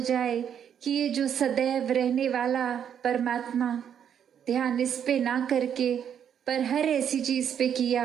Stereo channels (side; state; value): left; quieter; 8.7 dB